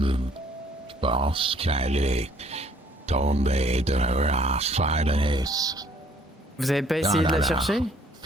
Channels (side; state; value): both; normal; correlation 0.61